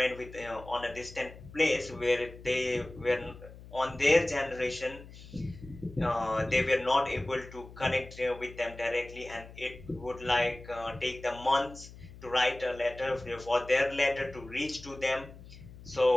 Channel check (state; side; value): noise; left; hum, 17 dB below the sound